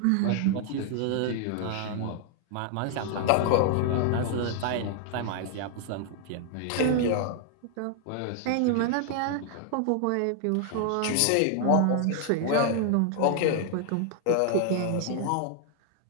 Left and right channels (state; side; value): different; both; correlation 0.00